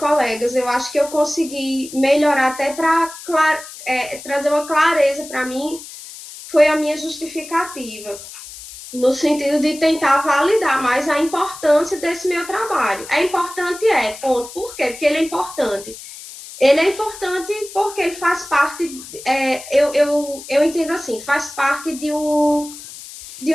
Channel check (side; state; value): left; noise; hiss, 15 dB below the sound